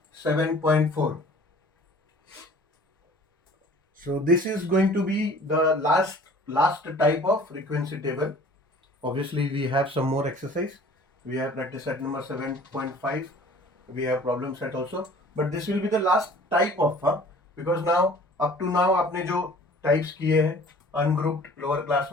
7.4. So this is going to be the last type of frequency table. Obviously we have some more exercise. We have practice set number 7.5. We have problem set also, but this will be the last type of because now up to now आपने जो types किए हैं ungrouped lower class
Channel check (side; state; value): both; normal; correlation 0.49